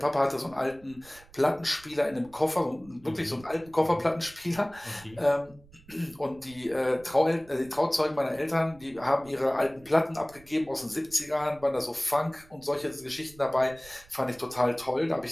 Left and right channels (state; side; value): noise; right; rumble, 24 dB below the sound